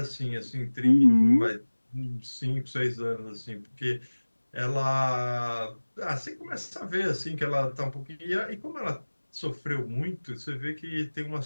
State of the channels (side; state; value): both; inverted; correlation -1.00